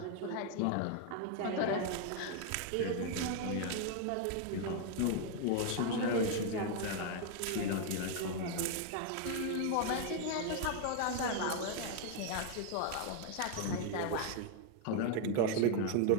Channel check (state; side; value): different; both; correlation 0.00